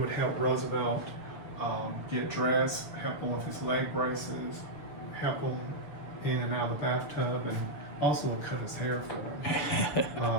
help Roosevelt get dressed, help him with his leg braces, help him in and out of the bathtub, and also cut his hair for him.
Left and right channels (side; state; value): right; late; 6.9 ms